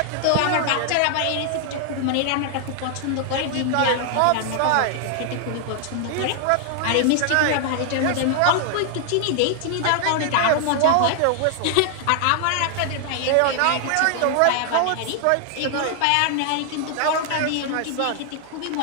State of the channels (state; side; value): different; both; correlation 0.00